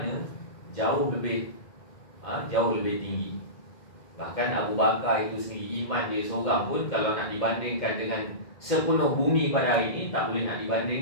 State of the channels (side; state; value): right; late; 2.1 ms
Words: jauh lebih tinggi. Bahkan Abu Bakar itu sendiri, iman dia seorang pun kalau nak dibandingkan dengan sepenuh bumi pada hari ini, tak boleh nak